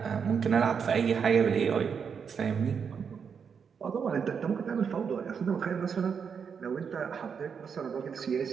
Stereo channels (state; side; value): quieter; left; 6.6 dB